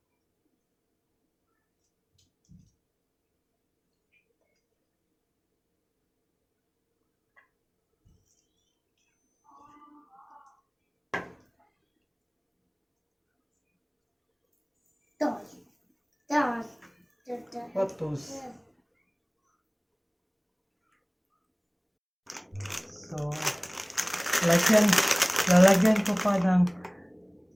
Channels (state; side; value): identical; both; correlation 1.00